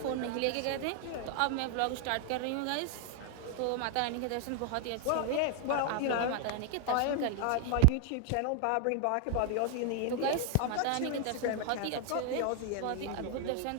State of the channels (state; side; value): different; both; correlation 0.00